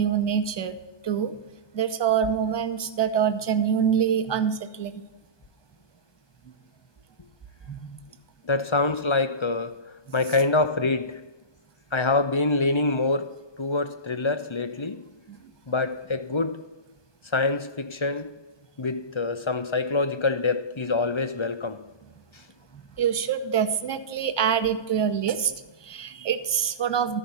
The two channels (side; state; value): right; late; 1.2 ms